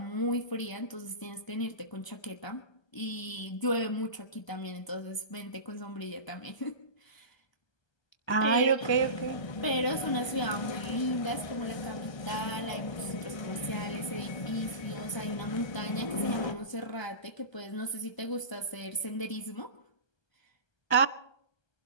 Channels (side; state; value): right; late; 1.3 ms